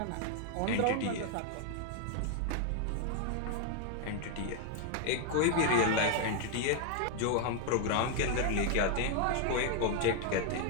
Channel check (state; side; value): different; both; correlation 0.00